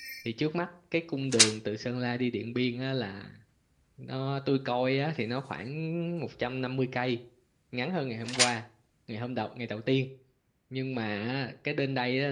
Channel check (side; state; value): both; identical; correlation 1.00